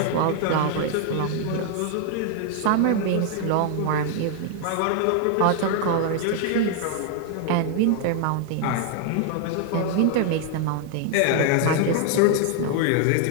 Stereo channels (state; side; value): different; both; correlation 0.00